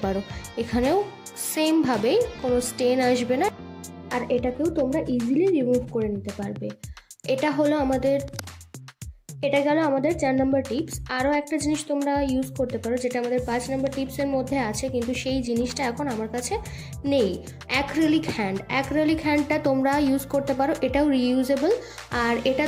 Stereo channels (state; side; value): identical; both; correlation 1.00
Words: পারো। এখানেও সেমভাবেই কোনো স্টেন আসবে না, আর এটাকেও তোমরা ইজিলি রিমুভ করে নিতে পারবে। এটা গেল আমাদের 4 নম্বর টিপস। আরও একটা জিনিস তোমরা ইউজ করতে পারো যেটা আমাদের 5 নম্বর টিপসের মধ্যে আছে, কিন্তু সেই জিনিসটা এখন আমার কাছে নেই। অ্যাক্রিলিক হ্যান্ডটা তোমরা ইউজ করতে পারো, এটাও রিইউজেবল। আর এটা